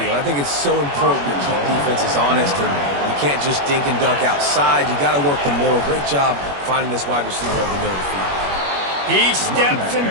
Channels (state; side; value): late; left; 21 ms